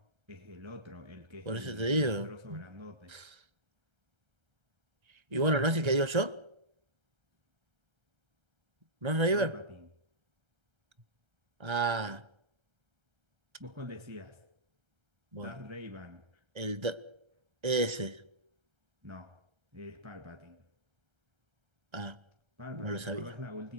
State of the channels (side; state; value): left; late; 1.3 ms